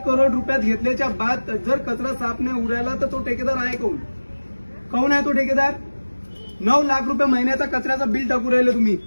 करोड रुपयात घेतल्याच्या बाद जर कचरा साफ नाही उरायला तर तो ठेकेदार आहे कोण आहे तो ठेकेदार. 9 लाख रुपये महिन्याचा कचऱ्याचा बिल टाकू राहिले तुम्ही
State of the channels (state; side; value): inverted; both; correlation -1.00